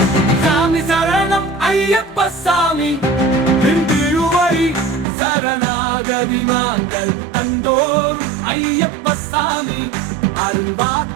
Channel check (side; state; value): left; drops out; at 5.1 s